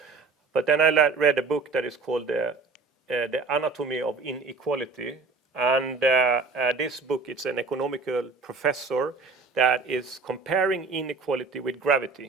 But then I read a book that is called The Anatomy of Inequality. And this book, it's an economical professor that is comparing inequality with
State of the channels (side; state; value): left; quieter; 4.2 dB